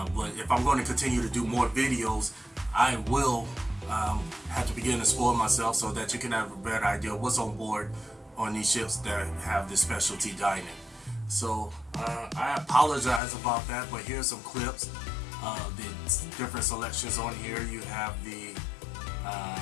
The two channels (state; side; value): drops out; right; at 13.2 s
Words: But if I'm going to continue to do more videos, I will have to begin to spoil myself so that you can have a better idea of what's on board on these ships that have this specialty dining. So I apologize about that, but here's some clips of the different selections on here. You have the